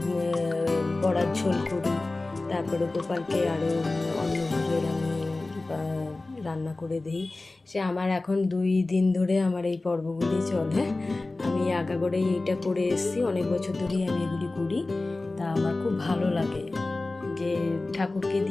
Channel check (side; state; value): right; quieter; 3.1 dB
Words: বড়ার ঝোল করি, তারপরে গোপালকে আরও অন্য ভোগের আমি রান্না করে দিই। সে আমার এখন 2 দিন ধরে আমার এই পর্বগুলি চলে। আমি আগাগোড়াই এইটা করে এসেছি, অনেক বছর ধরেই আমি এগুলি করি। তা আমার খুব ভালো লাগে যে ঠাকুরকে